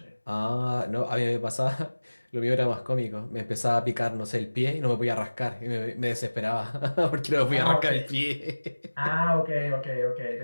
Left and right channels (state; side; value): inverted; both; correlation -1.00